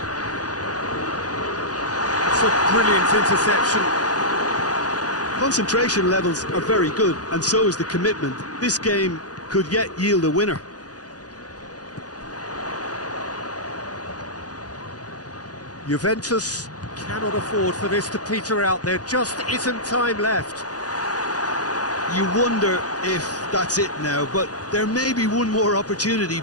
It's a brilliant interception. Concentration levels are very good, and so is the commitment. This game could yet yield a winner. Juventus cannot afford for this to peter out. There just isn't time left. You wonder if that's it now, but there may be one more opportunity,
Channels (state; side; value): late; right; 0.68 ms